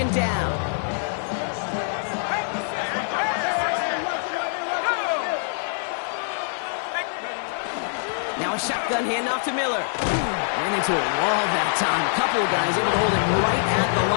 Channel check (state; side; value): silent; right; 62 dB below the other